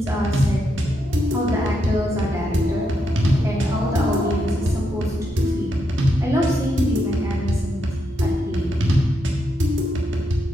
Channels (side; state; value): both; normal; correlation 0.81